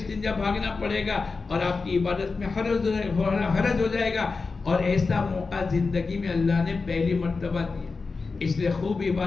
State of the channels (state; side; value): quieter; right; 4.3 dB